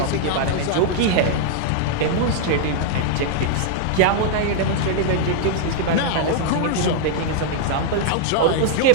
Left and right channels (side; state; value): both; different; correlation -0.01